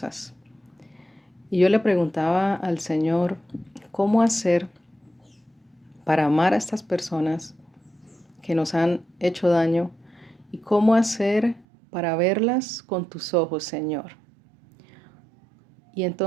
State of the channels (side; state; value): left; drops out; at 11.7 s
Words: Y yo le preguntaba al Señor, ¿cómo hacer para amar a estas personas que nos han hecho daño? ¿Y cómo hacer para verlas con tus ojos, Señor? Y